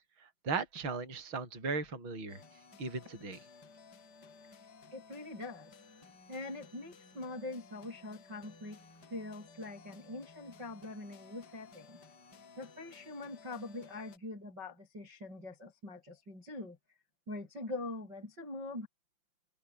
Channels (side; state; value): left; late; 5.8 ms